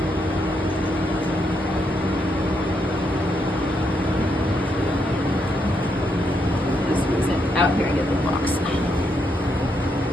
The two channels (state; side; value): normal; both; correlation 0.78